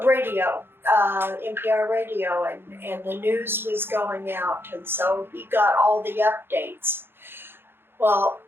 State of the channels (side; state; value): left; late; 0.11 ms